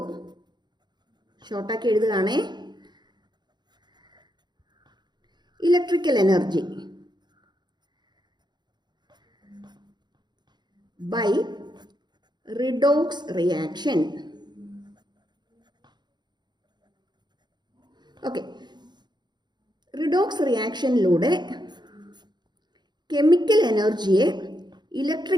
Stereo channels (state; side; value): late; left; 0.21 ms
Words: ഷോർട്ടാക്കി എഴുതുകയാണേ, electrical energy by redox reaction. Okay, redox റിയാക്ഷനിലൂടെ chemical എനർജിയെ